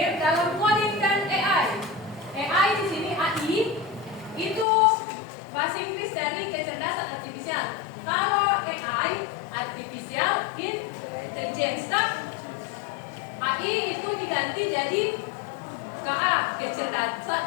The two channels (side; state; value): right; drops out; at 4.7 s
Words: dalam coding dan AI. AI di sini AI itu bahasa Inggris dari kecerdasan artifisial. Kalau AI artificial intelligence, AI itu diganti jadi KA,